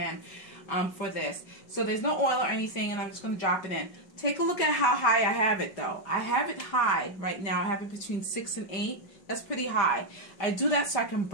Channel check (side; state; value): right; late; 5.4 ms